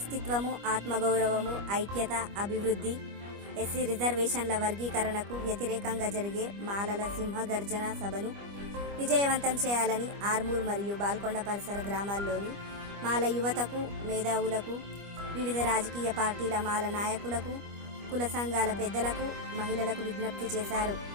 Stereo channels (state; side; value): late; left; 25 ms